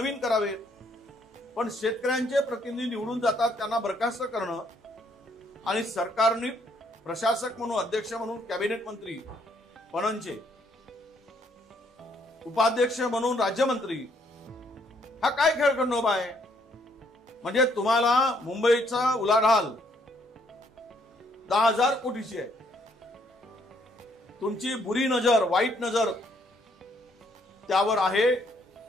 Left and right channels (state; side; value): normal; both; correlation 0.69